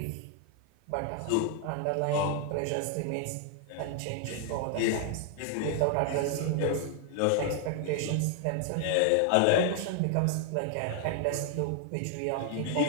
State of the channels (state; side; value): different; both; correlation 0.00